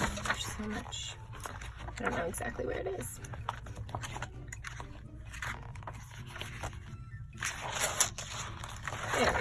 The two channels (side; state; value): both; identical; correlation 1.00